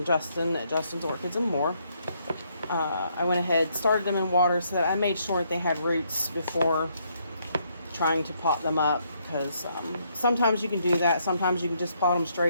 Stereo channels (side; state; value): both; inverted; correlation -0.73